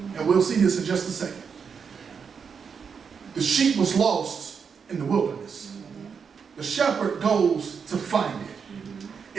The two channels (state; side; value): quieter; left; 6.3 dB